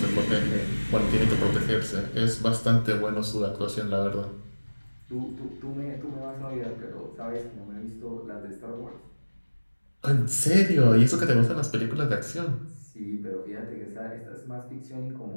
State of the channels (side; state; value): both; inverted; correlation -1.00